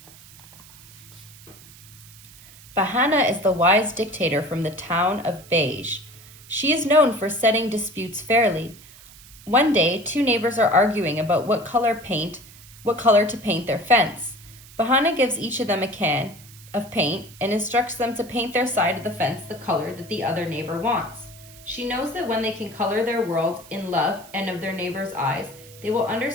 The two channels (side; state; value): right; noise; hiss, 21 dB below the sound